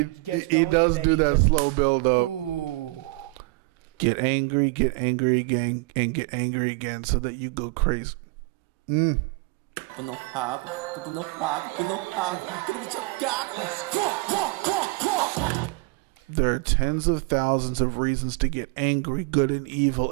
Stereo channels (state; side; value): quieter; left; 24.5 dB